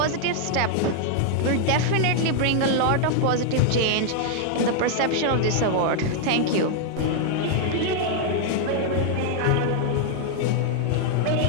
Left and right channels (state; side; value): different; both; correlation 0.00